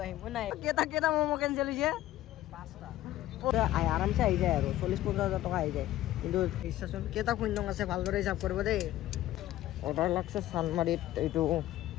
আহিম নাই। কেইটা ম'ম' কেঞ্চেল হৈছে? 5টা। আৰামছে আহি যায় আৰু 40-50 হাজাৰ টকা আহি যায়। কিন্তু ইচ্ছাচোন কেইটা শূন্য আছে ভালদৰে হিচাপ কৰিব দেই। অৰ্ডাৰ লাগছে চানমাৰিত। এইটো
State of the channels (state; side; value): quieter; right; 14.6 dB